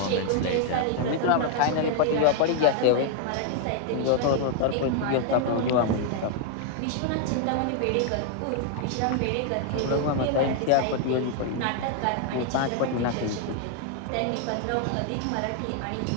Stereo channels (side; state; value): both; different; correlation 0.00